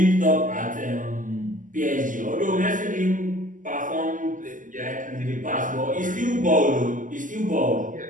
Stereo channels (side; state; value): left; late; 0.38 ms